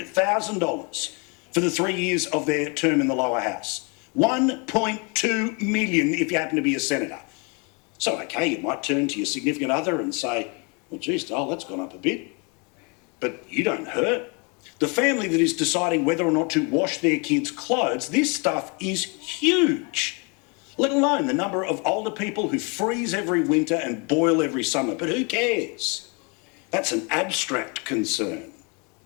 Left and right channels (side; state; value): right; quieter; 32.8 dB